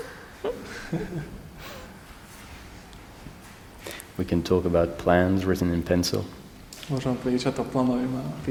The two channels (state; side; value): identical; both; correlation 1.00